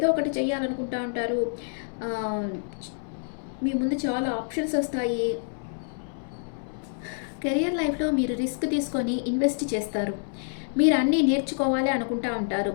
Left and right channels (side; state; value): right; silent; 60 dB below the other